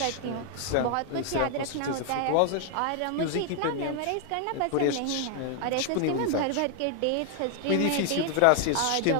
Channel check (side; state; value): both; different; correlation 0.00